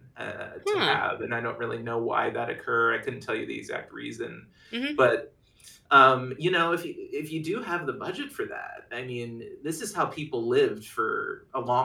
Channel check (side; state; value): both; identical; correlation 1.00